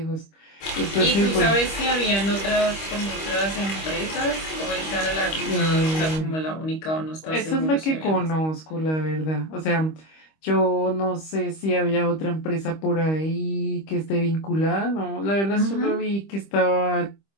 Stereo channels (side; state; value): right; late; 25 ms